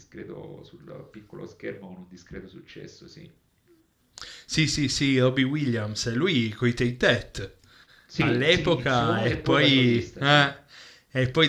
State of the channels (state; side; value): identical; both; correlation 1.00